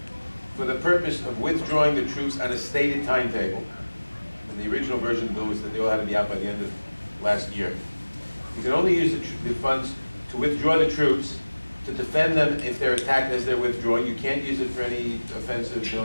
for the purpose of withdrawing the troops on a stated timetable. And the original version of the bill was that they all had to be out by the end of last year. You can only use the funds to withdraw the troops, to defend them if they're attacked as they're withdrawing. You can't use it for any offensive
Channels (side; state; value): both; inverted; correlation -1.00